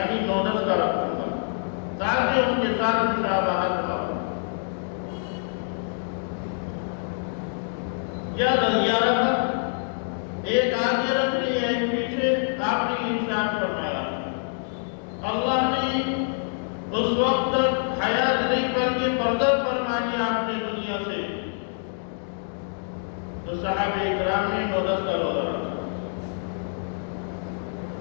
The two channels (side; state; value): right; silent; digital silence